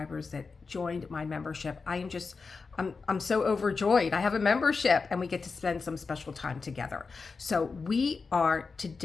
that joined my membership. I'm so overjoyed. I have a membership and we get to spend some special time together. So we are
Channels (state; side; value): quieter; right; 4.6 dB